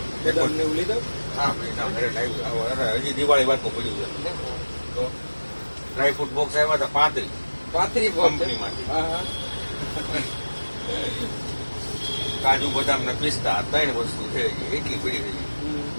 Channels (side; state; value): both; inverted; correlation -1.00